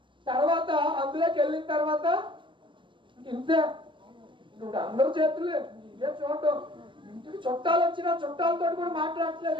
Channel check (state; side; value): late; left; 0.24 ms